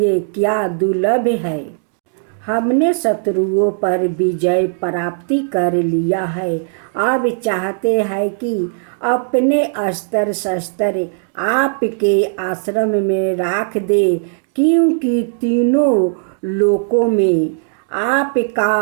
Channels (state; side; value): silent; left; digital silence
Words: क्या दुर्लभ है। हमने शत्रुओं पर विजय प्राप्ति कर लिया है। अब चाहते हैं कि अपने अस्त्र शस्त्र आपके आश्रम में रख दे, क्योंकि तीनों लोकों में आपका